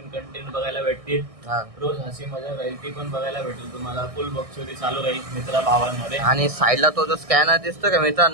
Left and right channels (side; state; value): left; late; 1.6 ms